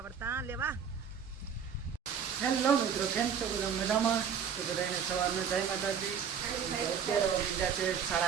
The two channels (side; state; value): left; quieter; 7.4 dB